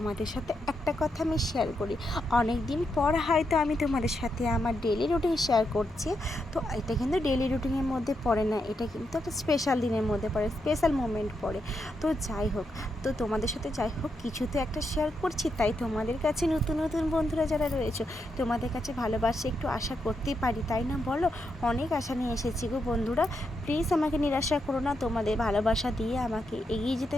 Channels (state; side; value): normal; both; correlation 0.82